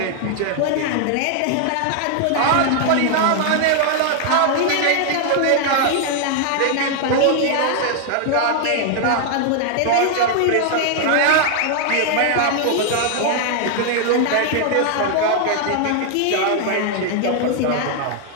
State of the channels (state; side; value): different; both; correlation 0.00